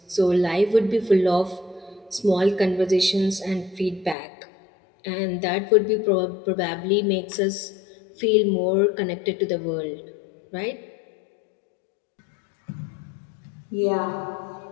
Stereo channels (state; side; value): drops out; right; at 4.2 s